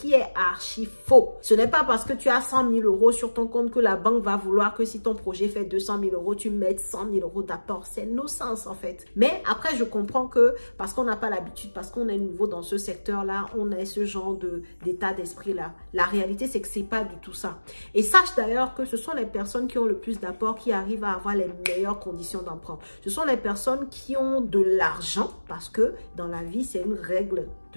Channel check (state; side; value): inverted; both; correlation -1.00